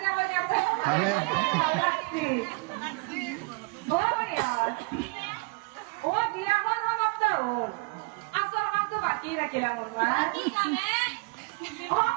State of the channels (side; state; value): left; quieter; 28.8 dB